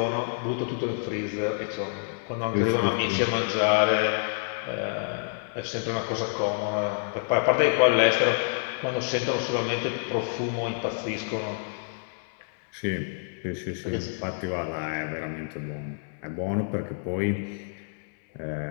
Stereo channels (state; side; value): silent; right; 60 dB below the other